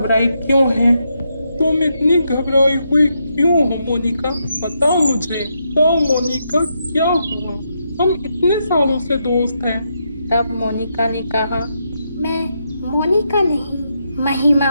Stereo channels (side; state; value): both; inverted; correlation -0.81